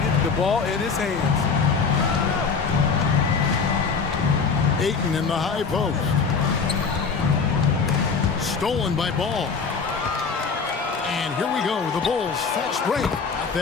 the ball in his hands. Ayton in the high post. Stolen by Ball. And here we go. The Bulls fast break. Got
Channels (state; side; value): quieter; right; 5.3 dB